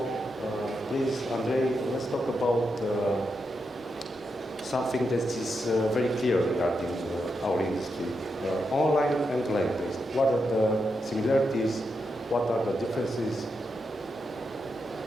Please, Andrei, let's talk about something that is very clear regarding our industry. Online and land-based. What are the similarities? What are the differences?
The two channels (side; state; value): both; normal; correlation 0.85